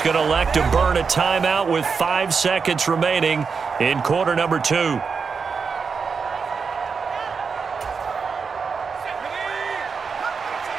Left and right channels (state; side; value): quieter; left; 5.5 dB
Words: going to elect to burn a timeout with 5 seconds remaining in quarter number 2.